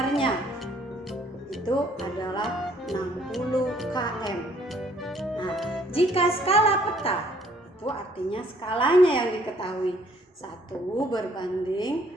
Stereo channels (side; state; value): both; normal; correlation 0.62